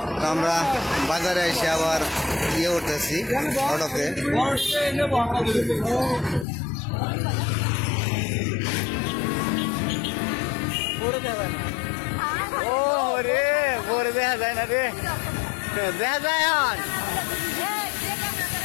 আমরা বাজারে এসে আবার ইয়ে উঠতেছি অটোতে। ও রে পরে দেখা যায় না রে, দেখা যায়।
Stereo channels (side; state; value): right; drops out; at 6.5 s